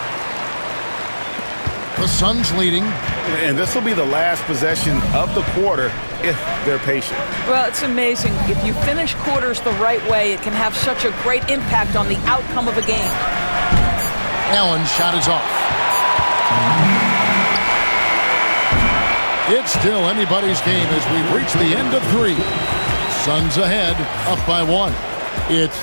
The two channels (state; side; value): inverted; both; correlation -1.00